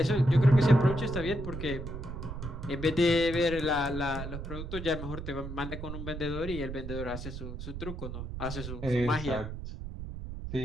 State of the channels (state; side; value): noise; right; rumble, 8 dB below the sound